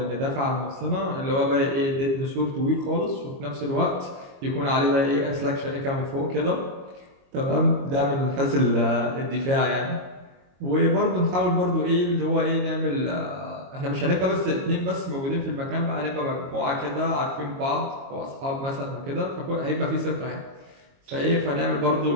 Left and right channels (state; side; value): late; left; 22 ms